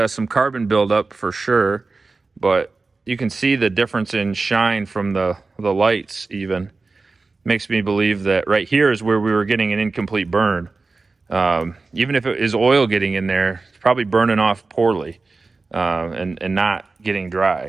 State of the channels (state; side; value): quieter; left; 3.9 dB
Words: some carbon buildup for sure, but you can see the difference in shine from the lights even. Makes me believe that right here is where we were getting an incomplete burn. Even if it is oil getting in there, it's probably burning off poorly and not getting